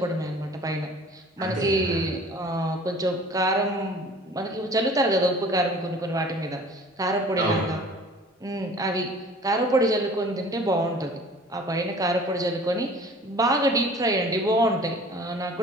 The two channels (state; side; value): normal; both; correlation 0.48